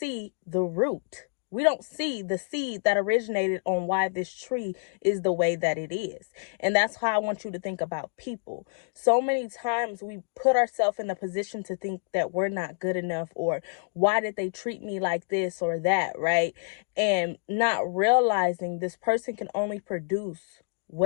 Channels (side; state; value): right; silent; digital silence